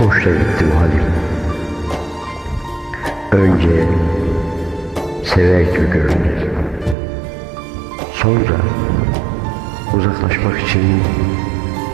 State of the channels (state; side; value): drops out; left; at 7.0 s